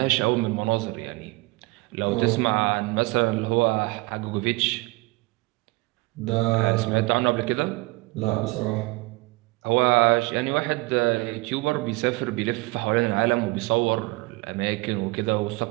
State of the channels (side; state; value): left; quieter; 23.8 dB